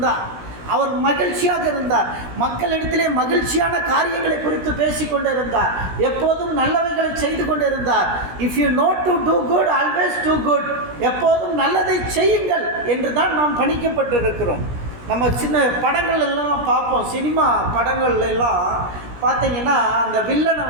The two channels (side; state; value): left; late; 17 ms